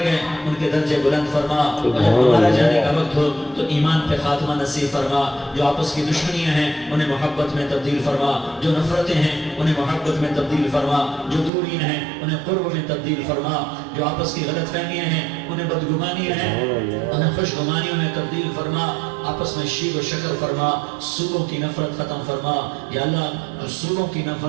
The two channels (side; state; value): left; drops out; at 11.5 s